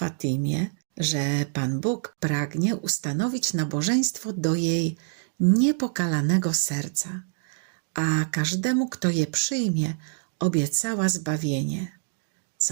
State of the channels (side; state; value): left; silent; 61 dB below the other